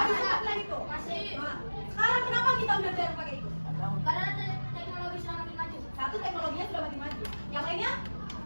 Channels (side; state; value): both; inverted; correlation -1.00